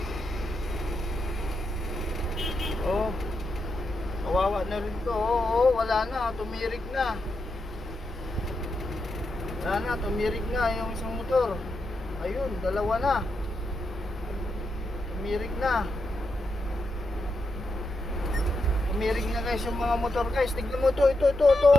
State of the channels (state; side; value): normal; both; correlation 0.85